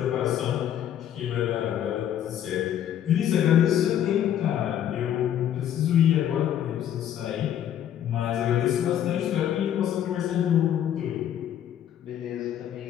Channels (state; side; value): quieter; right; 10.4 dB